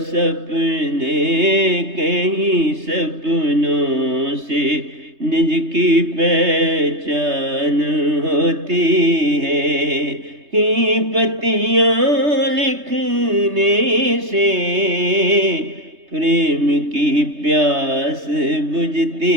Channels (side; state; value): left; late; 3.2 ms